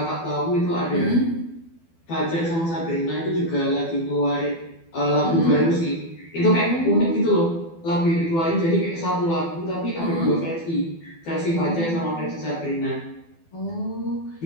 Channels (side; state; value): right; late; 12 ms